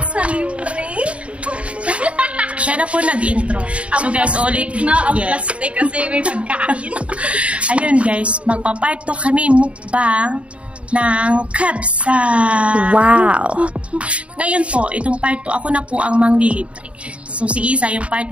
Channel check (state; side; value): late; left; 0.062 ms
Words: sa libre. Siya na po nag-intro. So guys, ulit. Ang plastic kasi may pagkain. Ayun guys, magpa-part 2 kami mukbang ng kabsa. Wow! Ngayon po, itong part 2, ako na po ang manglilibre. So si Isa, yung part